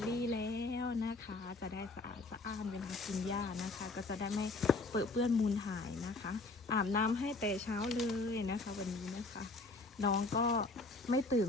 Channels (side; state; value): right; quieter; 3.4 dB